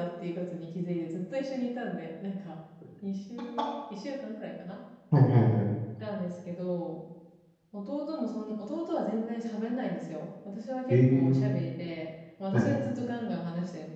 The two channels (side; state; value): both; identical; correlation 1.00